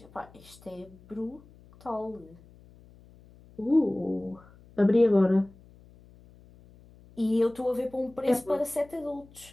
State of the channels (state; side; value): noise; left; hum, 25 dB below the sound